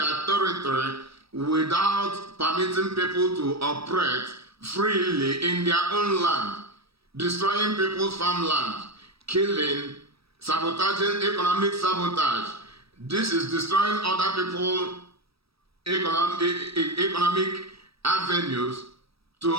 territory without permitting people to operate freely in their own land, destroying people's farmland, killing, sabotaging, economic sabotage. This is destroying other people's economic avenues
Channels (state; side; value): late; left; 0.77 ms